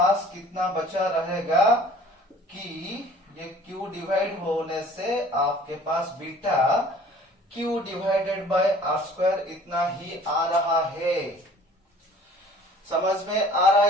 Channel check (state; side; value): normal; both; correlation 0.50